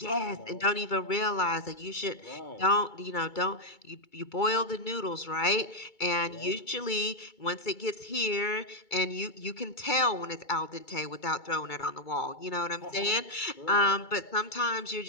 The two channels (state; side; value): late; right; 2.3 ms